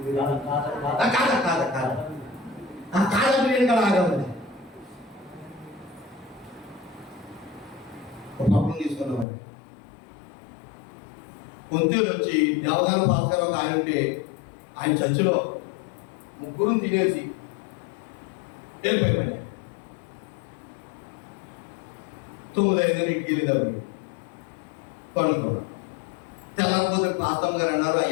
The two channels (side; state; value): right; drops out; at 9.2 s